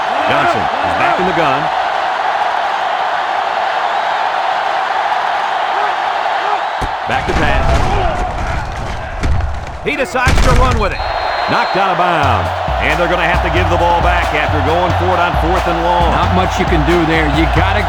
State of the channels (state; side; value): identical; both; correlation 1.00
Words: Johnson is back in the gun. Back to pass. He decides to run with it. Knocked out of bounds. And they're going to have to give the ball back after going for it on 4th and long. Not much you can do there. You got to